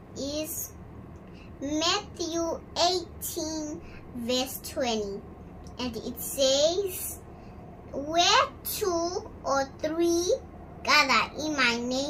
is Matthew 18 verse 20, and it says, "Where 2 or 3 gather in my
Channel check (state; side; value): identical; both; correlation 1.00